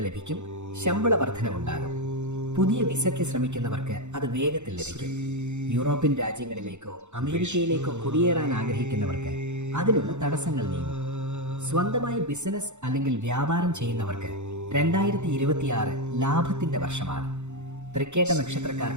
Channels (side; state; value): left; late; 0.83 ms